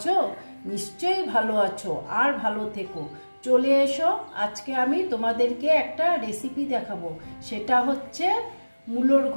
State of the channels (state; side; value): inverted; both; correlation -1.00